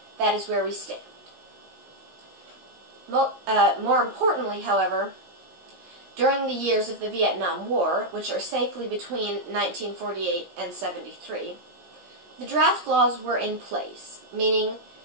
that is where we stand. More importantly, however, during the years of the Vietnam War, which are safely between 1948 and 73, the draft laws were in place, meaning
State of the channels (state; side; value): late; left; 17 ms